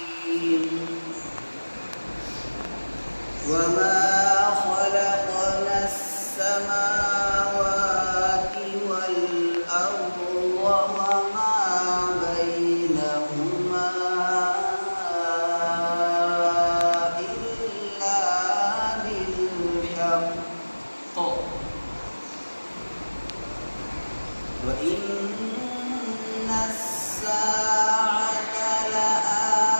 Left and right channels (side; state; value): both; inverted; correlation -1.00